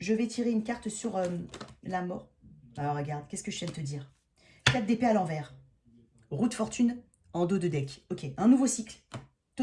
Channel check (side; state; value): both; identical; correlation 1.00